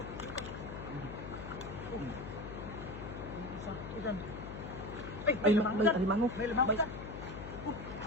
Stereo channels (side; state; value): left; noise; hum, 9 dB below the sound